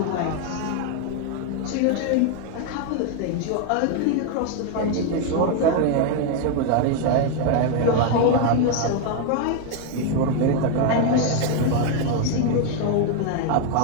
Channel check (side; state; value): both; different; correlation 0.01